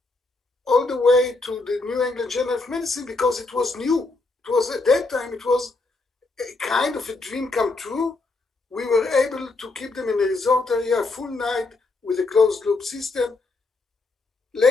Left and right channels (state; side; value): quieter; right; 3.4 dB